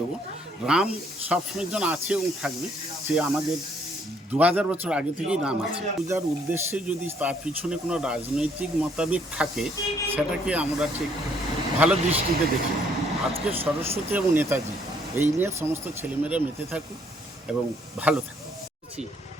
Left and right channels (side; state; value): both; normal; correlation 0.66